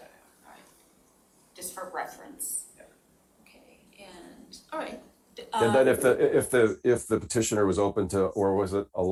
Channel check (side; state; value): both; identical; correlation 1.00